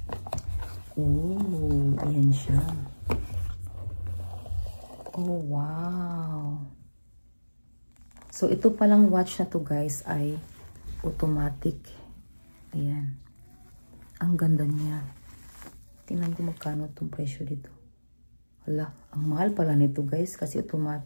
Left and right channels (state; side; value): inverted; both; correlation -1.00